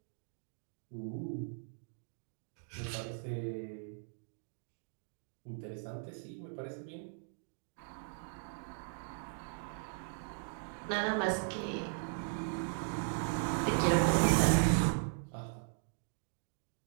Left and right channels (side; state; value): left; silent; digital silence